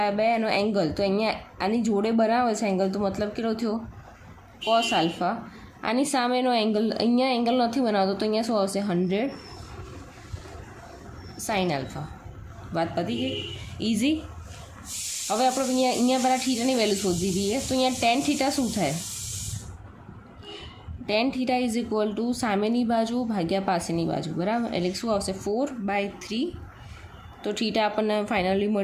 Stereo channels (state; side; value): identical; both; correlation 1.00